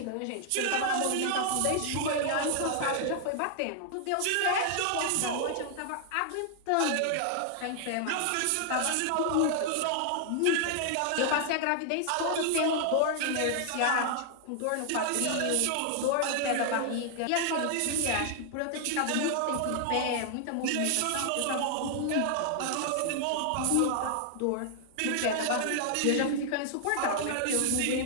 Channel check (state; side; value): different; both; correlation 0.00